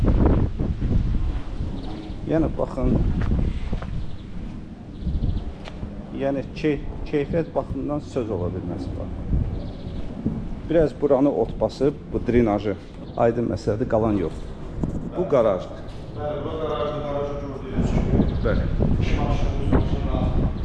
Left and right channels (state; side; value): identical; both; correlation 1.00